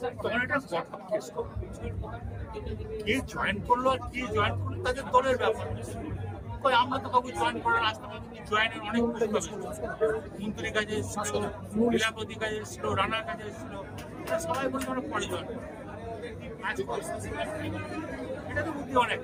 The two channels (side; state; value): both; identical; correlation 1.00